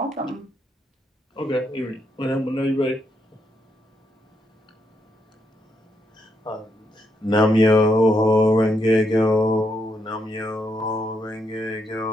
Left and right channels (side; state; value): both; normal; correlation 0.78